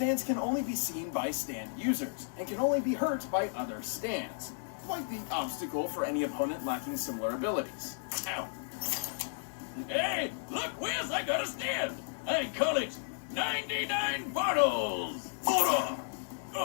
can only be seen by stand users, and can only be hurt by other stands. Quite the obstacle for any opponent lacking similar abilities. Ow. Hey, look, Wiz, I got a stand. I call it 99 bottles. Hold on.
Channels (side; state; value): right; silent; digital silence